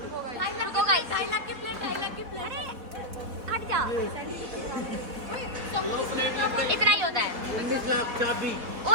रुको गाइस, 2.5 लाख की प्लेट, 2.5 लाख की प्लेट। अरे हट जा, इतना ही होता है। 19 लाख चाबी।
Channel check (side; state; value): left; late; 4.1 ms